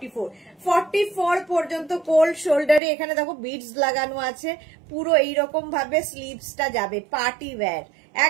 44 পর্যন্ত কোল্ড শোল্ডারে। এখানে দেখো বিডস লাগানো আছে, পুরো এইরকম ভাবে স্লিভসটা যাবে। পার্টি ওয়্যার,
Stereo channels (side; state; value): left; drops out; at 2.8 s